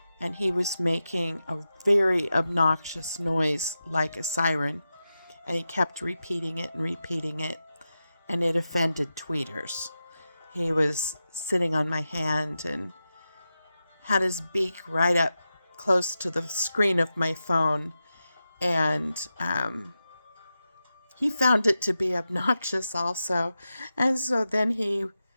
and he was making a very obnoxious noise like a siren, and he kept repeating it, and it offended tweeters. He was sitting on my hand and had his beak right up close to the screen of my phone, and he found it to be obnoxious also. And so then he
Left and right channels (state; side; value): inverted; both; correlation -0.91